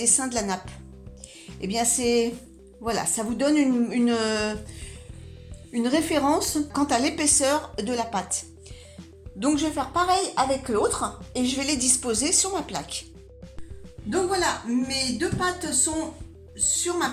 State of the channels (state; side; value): identical; both; correlation 1.00